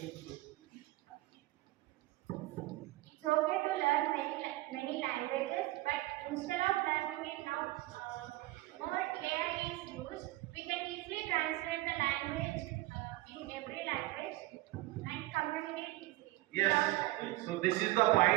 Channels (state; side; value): quieter; left; 18.4 dB